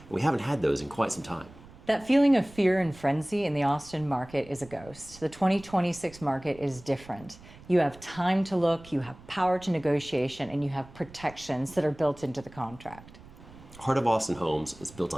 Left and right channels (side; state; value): right; noise; rumble, 20 dB below the sound